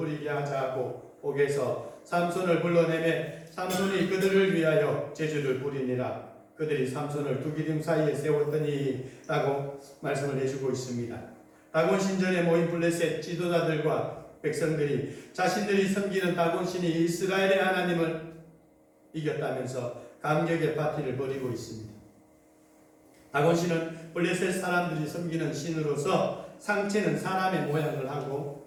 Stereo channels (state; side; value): identical; both; correlation 1.00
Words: 하자 하고 옥에서 삼손을 불러내매 삼손이 그들을 위하여 제주를 부리니라. 그들이 삼손을 두 기둥 사이에 세웠더니 라고 말씀을 해주고 있습니다. 다곤 신전에 모인 블레셋 지도자들과 백성들이 자신들이 섬기는 다곤 신이 이스라엘의 하나님을 이겼다면서 감격의 파티를 벌이고 있습니다. 다곤 신은 블레셋 사람들이 섬기는 신으로서 상체는 사람의 모양을